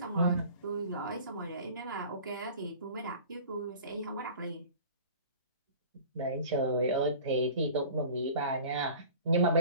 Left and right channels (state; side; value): inverted; both; correlation -0.43